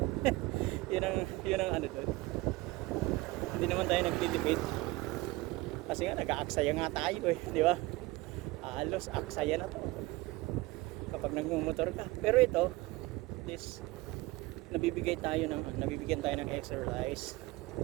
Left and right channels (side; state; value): left; quieter; 20.7 dB